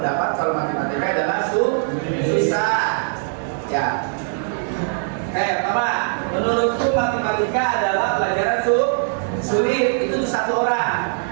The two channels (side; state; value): left; silent; 65 dB below the other